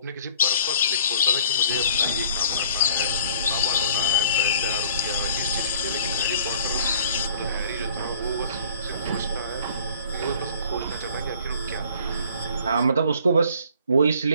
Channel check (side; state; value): both; inverted; correlation -0.53